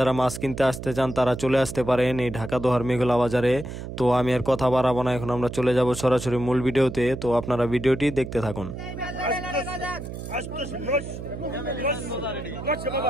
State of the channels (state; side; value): noise; right; hum, 9 dB below the sound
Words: মাছ কিনতে আসতে চান তারা চলে আসতে পারেন এই ঢাকা দোহার মেঘলা বাজারে। তো আমি আর কথা বাড়াবো না, এখন আমরা চলে যাব সরাসরি মূল ভিডিওতে। তো আপনারা ভিডিওটি দেখতে থাকুন।